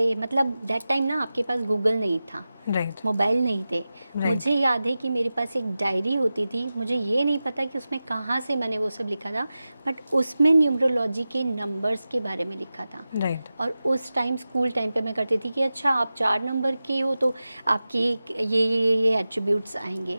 मतलब दैट टाइम ना आपके पास गूगल नहीं था, राइट. मोबाइल नहीं थे. Right. मुझे याद है कि मेरे पास एक डायरी होती थी. मुझे ये नहीं पता कि उसमें कहाँ से मैंने वो सब लिखा था, बट उसमें न्यूमरोलॉजी के नंबर्स के बारे में लिखा था. राइट. और उस टाइम स्कूल टाइम पे मैं करती थी कि अच्छा आप 4 नंबर के हो तो आपकी ये एट्रीब्यूट्स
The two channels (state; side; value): inverted; both; correlation -0.94